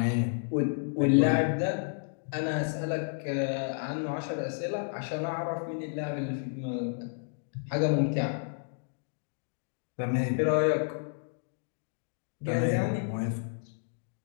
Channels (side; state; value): right; silent; digital silence